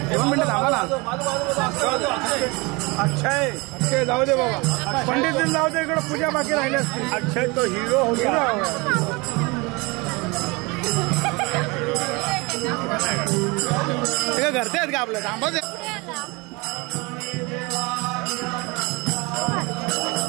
2 मिनिटं थांबा ना. अक्षय अक्षय जाऊ दे बाबा पंडित दिन जाऊ दे इकडे पूजा बाकी राहिली असते. अक्षय तो हिरो होता. घरचे आहेत का आपलं थांबा.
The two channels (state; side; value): quieter; left; 26.1 dB